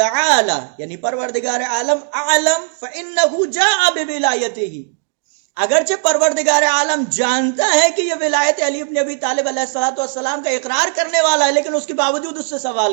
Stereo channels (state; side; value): silent; left; 66 dB below the other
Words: یعنی پروردگار عالم اعلم فإنہ جاء بولایتہ، اگرچہ پروردگار عالم جانتا ہے کہ یہ ولایت علی ابن ابی طالب علیہ السلام کا اقرار کرنے والا ہے، لیکن اس کے باوجود اس سے